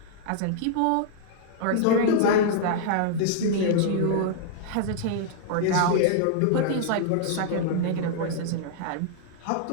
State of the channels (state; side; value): different; both; correlation -0.01